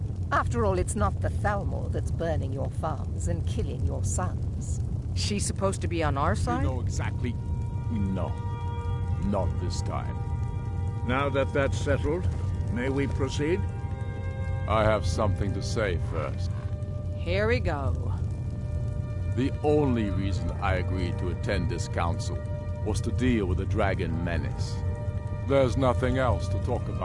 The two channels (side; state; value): both; identical; correlation 1.00